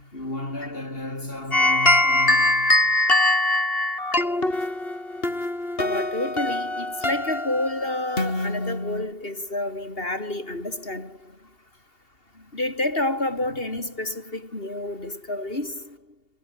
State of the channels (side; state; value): right; late; 2.8 ms